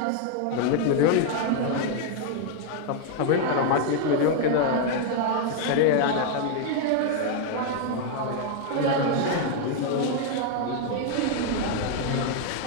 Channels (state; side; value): different; both; correlation 0.00